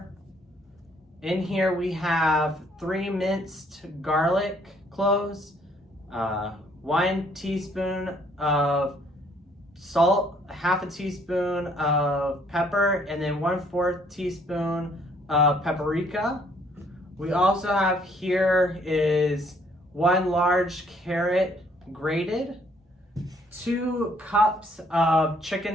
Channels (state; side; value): normal; both; correlation 0.64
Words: In here we have 3 minced garlic cloves, 1 teaspoon of salt, half a teaspoon of pepper, and then 1/4 teaspoon of paprika. We also have here is 1 large carrot grated, 2 cups of